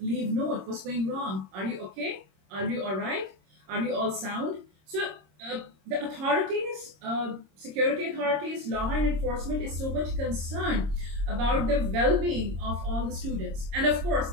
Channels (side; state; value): left; late; 26 ms